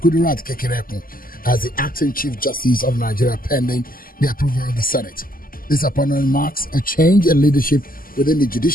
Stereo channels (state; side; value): late; right; 0.42 ms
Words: Kekereekun as the acting Chief Justice of Nigeria pending the approval of the Senate. This appointment marks a change in leadership within the